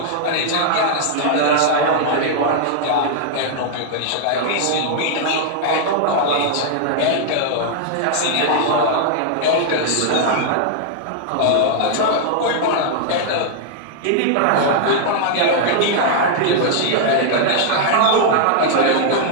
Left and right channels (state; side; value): different; both; correlation -0.01